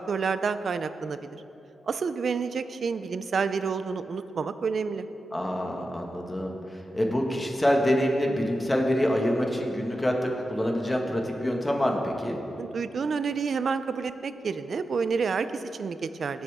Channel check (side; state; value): both; normal; correlation 0.90